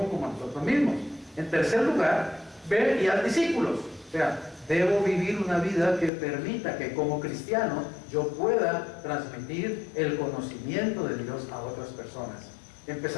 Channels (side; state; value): right; drops out; at 6.1 s